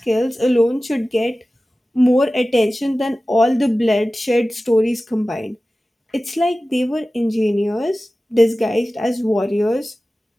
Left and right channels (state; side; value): normal; both; correlation 0.96